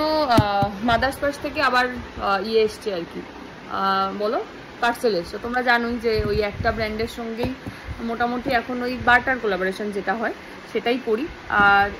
মাদার্স পার্স থেকে আবার ইয়ে এসছে আর কি, বলো পার্সেল এসছে। তোমরা জানোই যে ওই একটা ব্র্যান্ডের সঙ্গেই মোটামুটি এখন ওই বার্টার কোলাবোরেশন যেটা হয় সেটাই করি। আর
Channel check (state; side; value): identical; both; correlation 1.00